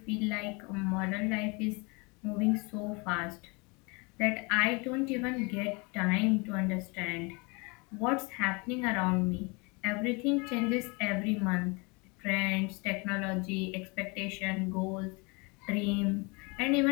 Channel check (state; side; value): quieter; right; 29.2 dB